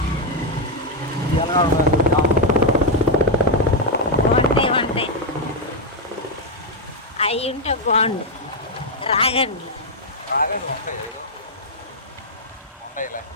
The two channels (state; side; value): normal; both; correlation 0.00